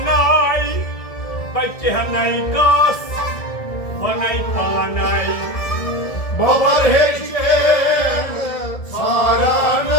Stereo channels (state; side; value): late; right; 1.7 ms